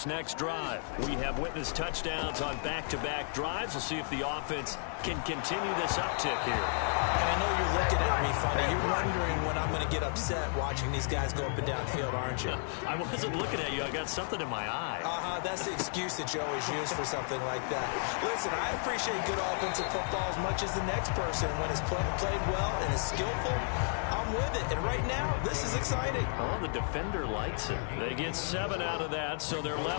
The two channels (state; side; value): silent; right; 56 dB below the other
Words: next drive. We have witnessed touchdowns on back-to-back drives. We'll see if the offense can continue this uptick here. And I know you're looking at me funny. You're wondering when I'm going to get upset watching these guys go up and down field, aren't you? I wasn't looking at you. I got something in my eye. That's the excuse that you always use for something like that. Listen, I appreciate good offensive football as much as the next person. When it's played well and is skillful, I'm with it. And right now, this is exciting. Oh, the defender likes it. They get 7 out of that, so they're